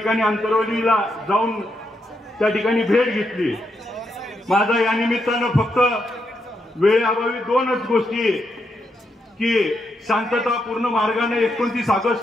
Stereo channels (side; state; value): both; normal; correlation 0.81